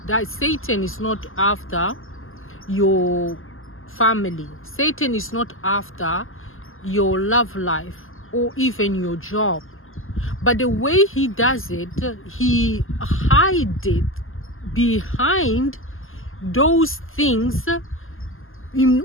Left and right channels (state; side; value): late; right; 0.59 ms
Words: that Satan is not after your family. Satan is not after your love life or even your job. But the way he does it, he hides it behind those things in